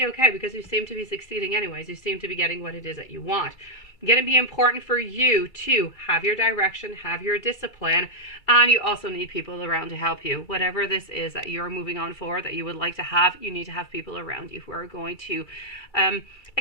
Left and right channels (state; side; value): late; right; 2.3 ms